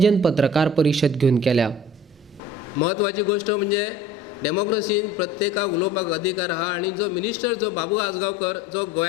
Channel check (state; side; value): normal; both; correlation 0.45